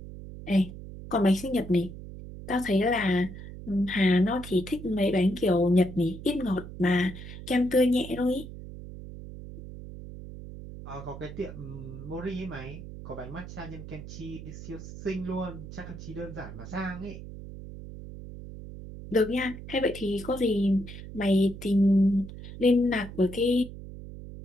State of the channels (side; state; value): right; noise; hum, 12 dB below the sound